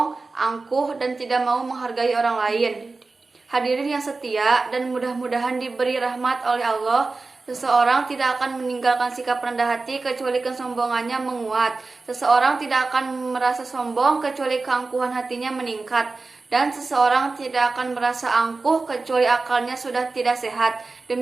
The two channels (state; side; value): quieter; left; 3.8 dB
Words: angkuh, dan tidak mau menghargai orang lain. Hadirin yang setia dan mudah-mudahan diberi rahmat oleh Allah, seseorang tidak akan meninggalkan sikap rendah hati kecuali kesombongannya menguat. Seseorang tidak akan merasa sombong kecuali keangkuhan hatinya meningkat. Dan seseorang tidak akan merasa angkuh kecuali akalnya sudah tidak sehat.